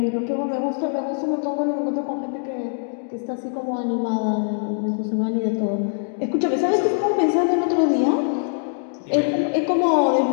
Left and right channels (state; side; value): silent; right; digital silence